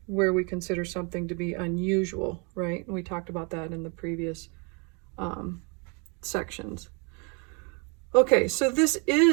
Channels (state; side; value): quieter; left; 33.7 dB